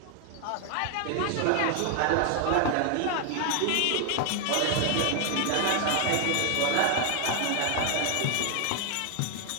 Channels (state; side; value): different; both; correlation 0.00